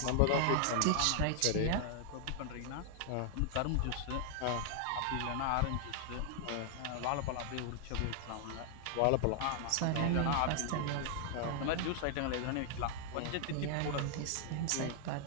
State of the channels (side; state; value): both; different; correlation 0.00